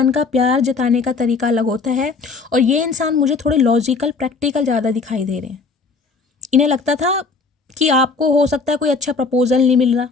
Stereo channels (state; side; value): quieter; right; 4.4 dB